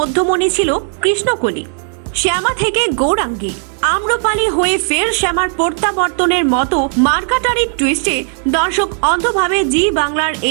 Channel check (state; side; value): silent; left; 59 dB below the other